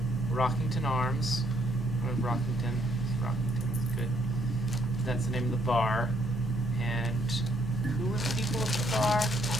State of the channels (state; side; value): normal; both; correlation 0.69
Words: Rockington Arms. Or Rockington. Rockington is good. That's the name of the bar. And who were the people at the bar?